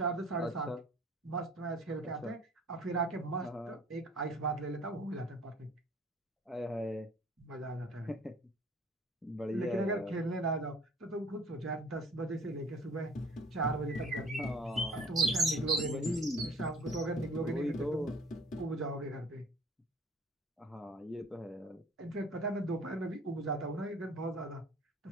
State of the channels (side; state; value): both; normal; correlation 0.49